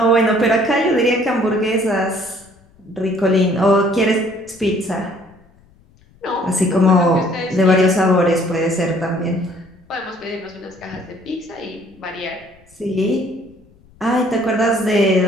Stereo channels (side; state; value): left; noise; rumble, 30 dB below the sound